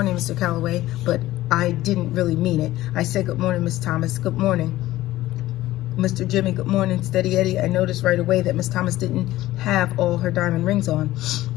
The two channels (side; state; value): right; quieter; 15.9 dB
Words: Mr. Calloway," but I didn't really mean it. I said, "Good morning, Miss Thomas." "Good morning, Mr. Jimmy." "Good morning, Steady Eddie." I noticed right away that Miss Thomas didn't have all her diamond rings on.